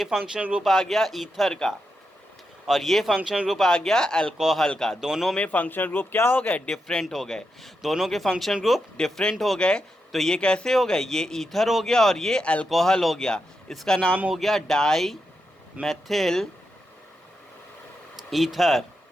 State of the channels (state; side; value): normal; both; correlation 0.86